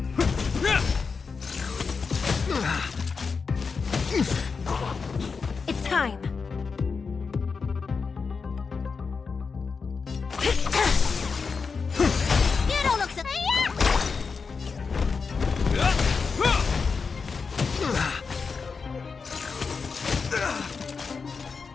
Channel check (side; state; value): right; quieter; 5.1 dB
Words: It's time. You don't look so...